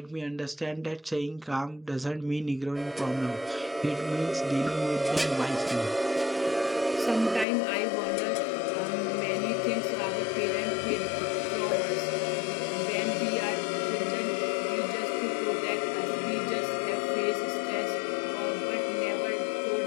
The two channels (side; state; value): right; drops out; at 7.5 s